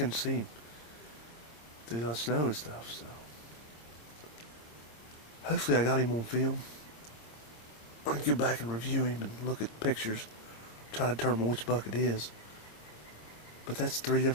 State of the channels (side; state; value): right; late; 26 ms